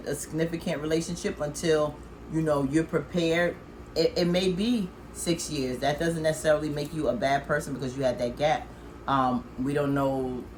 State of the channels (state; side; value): identical; both; correlation 1.00